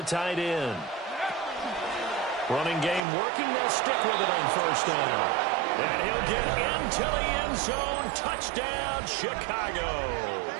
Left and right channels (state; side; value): drops out; left; at 3.0 s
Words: tight end. Running game working. They'll stick with it on first down. And he'll get into the end zone. Touchdown, Chicago.